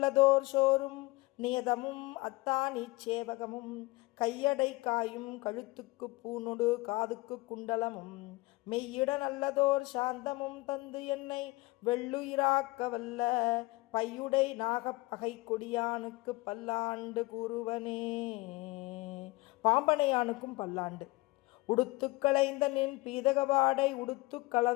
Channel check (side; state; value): right; quieter; 22.1 dB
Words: சோறும் நியதமும் அத்தானி சேவகமும் கையடை காயும் கழுத்துக்கு பூனொடு காதுக்கு குண்டலமும் மெய்யிட நல்லதோர் சாந்தமும் தந்து என்னை வெள்ளுயிராக்க வல்ல பையுடை நாகப்பகை கொடியானுக்கு பல்லாண்டு கூறுவனே. பாம்பனையானுக்கும் பல்லாண்டு. உடுத்து களைந்த நின் பீதகவாடை உடுத்து